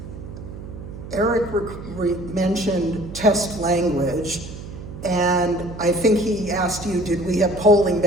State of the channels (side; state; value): right; noise; hum, 12 dB below the sound